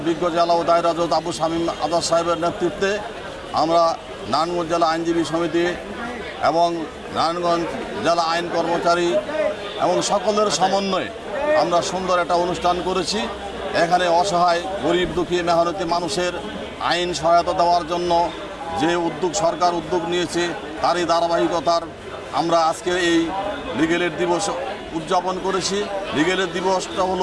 বিজ্ঞ জেলা ও দায়রা জজ আবু শামীম আজাদ সাহেবের নেতৃত্বে। আমরা নারায়ণগঞ্জ জেলা আইনজীবী সমিতি এবং নারায়ণগঞ্জ জেলা আইন কর্মচারী এবং সকলের সমন্বয়ে আমরা সুন্দর একটা অনুষ্ঠান করেছি। এখানে অসহায় গরিব দুঃখী মেহনতি মানুষের আইন সহায়তা দেওয়ার জন্য যে সরকার উদ্যোগ নিয়েছে তারই ধারাবাহিকতার আমরা আজকে এই লিগ্যাল এইড দিবস উদযাপন করেছি। লিগ্যাল এইড দিবসটা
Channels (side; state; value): both; identical; correlation 1.00